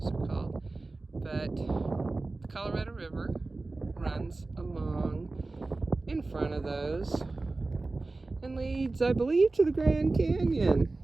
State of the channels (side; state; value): left; quieter; 3.4 dB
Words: are called, but the Colorado River runs along in front of those and leads, I believe, to the Grand Canyon.